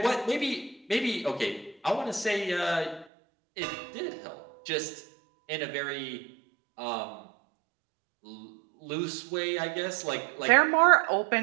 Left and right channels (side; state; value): left; drops out; at 3.1 s